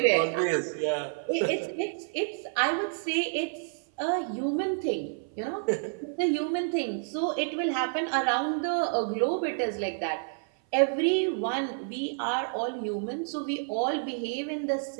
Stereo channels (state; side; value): silent; left; 55 dB below the other